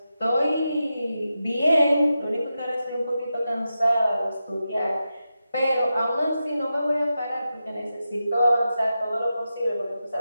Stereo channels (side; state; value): both; inverted; correlation -0.90